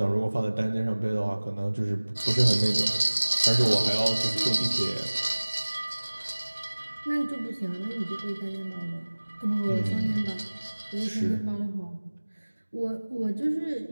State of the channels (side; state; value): both; inverted; correlation -1.00